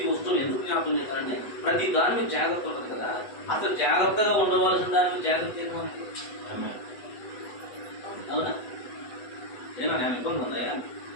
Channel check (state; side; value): late; right; 8.1 ms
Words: వస్తువులు ఎందుకు జ్ఞాపకం చేశారంటే ప్రతి దాని మీద జాగ్రత్త ఉంటుంది కదా. అసలు జాగ్రత్తగా ఉండవలసిన దాని మీద జాగ్రత్త ఏముంది? అవునా? ఏనా నేను ఇబ్బంది ఉందా?